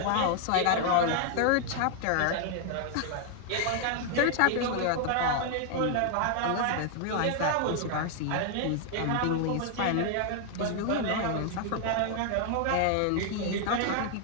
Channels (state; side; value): different; both; correlation 0.00